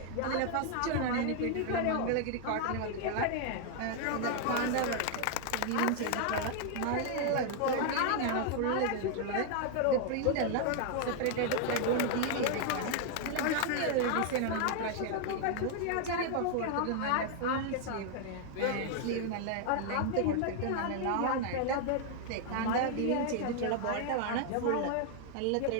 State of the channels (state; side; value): different; both; correlation 0.00